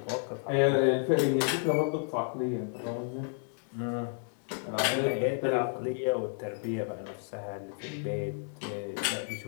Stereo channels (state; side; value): silent; right; digital silence